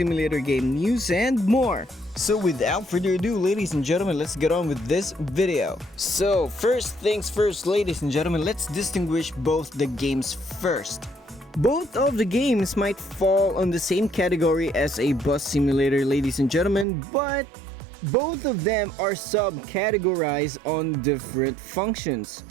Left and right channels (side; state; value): left; drops out; at 16.9 s